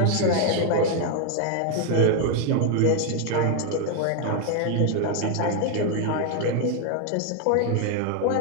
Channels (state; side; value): different; both; correlation 0.01